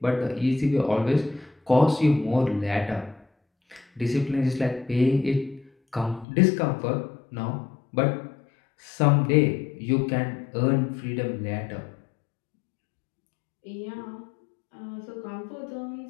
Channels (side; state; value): right; drops out; at 6.2 s